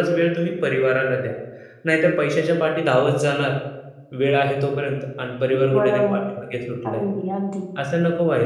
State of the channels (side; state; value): both; identical; correlation 1.00